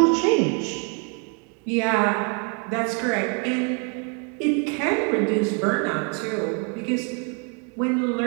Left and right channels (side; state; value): left; quieter; 37.7 dB